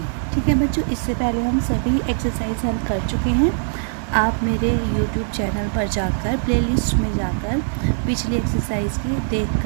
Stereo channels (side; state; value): left; silent; digital silence